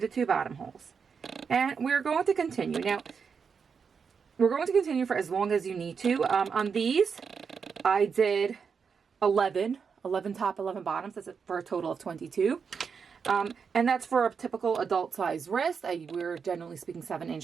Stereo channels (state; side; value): quieter; left; 6.1 dB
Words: two bottom holes. And we're going to continue. Now, we're going to continue for as long as you need to. On these, I did 11 top, 11 bottoms. That's for a total of 22. And that's for a typical adult size wrist. We're generally speaking